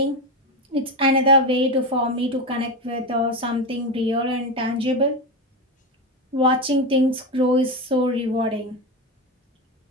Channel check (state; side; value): normal; both; correlation 0.16